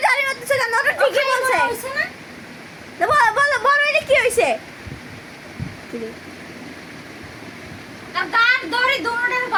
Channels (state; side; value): identical; both; correlation 1.00